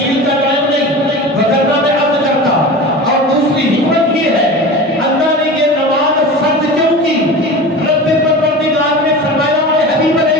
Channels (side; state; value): both; normal; correlation 0.32